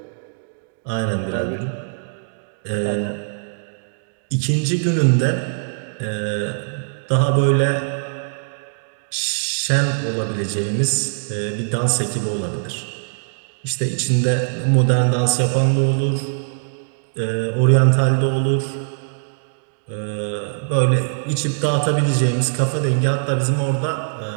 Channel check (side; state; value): left; silent; digital silence